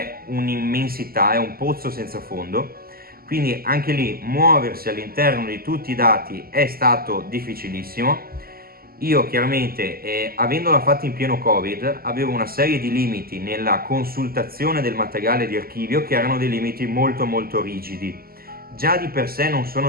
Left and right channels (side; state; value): left; late; 0.43 ms